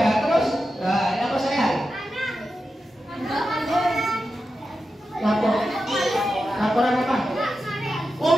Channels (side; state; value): both; normal; correlation 0.90